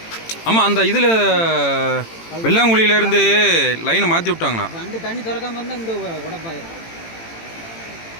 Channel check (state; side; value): late; right; 18 ms